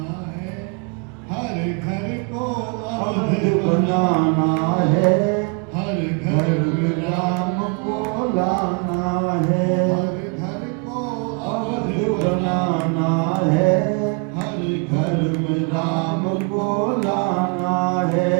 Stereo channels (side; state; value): left; quieter; 34.8 dB